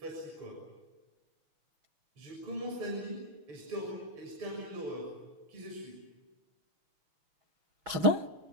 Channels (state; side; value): late; left; 6.2 ms